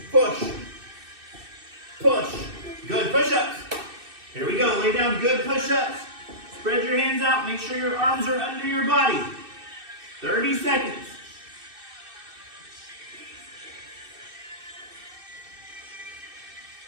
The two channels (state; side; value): late; left; 2.6 ms